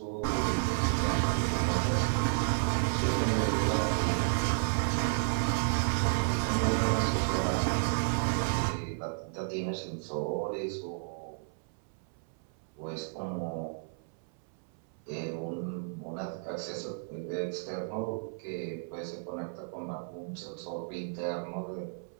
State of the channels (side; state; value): left; silent; 56 dB below the other